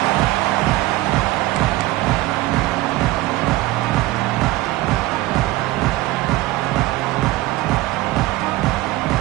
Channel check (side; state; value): left; quieter; 18.2 dB